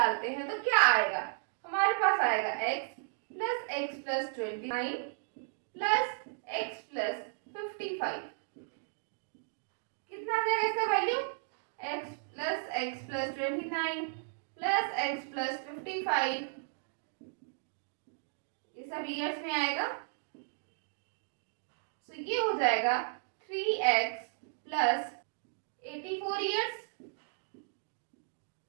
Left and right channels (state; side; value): silent; left; digital silence